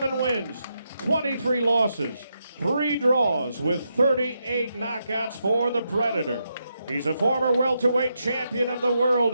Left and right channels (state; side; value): inverted; both; correlation -0.83